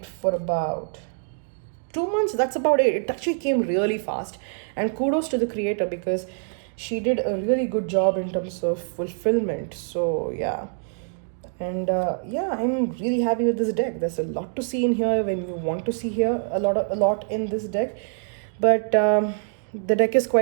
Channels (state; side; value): silent; left; digital silence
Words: for about 2 months. That's about it. It actually came really fast, and kudos to the creator because she did a really good job in terms of fulfillment. So yeah, And yeah, I'm really happy with this deck. There's a lot to see in here when you want to see here a lot in this deck. But the deck is